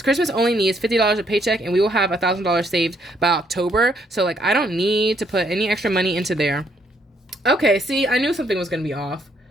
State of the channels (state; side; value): normal; both; correlation 0.70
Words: Christmas only needs $50 a paycheck, and we will have $1,000 saved by October. So like, I don't need to put any extra money into there. Okay, see, I knew something was gonna be off.